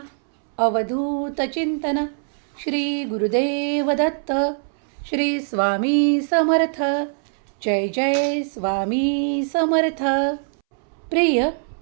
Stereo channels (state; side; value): silent; left; 64 dB below the other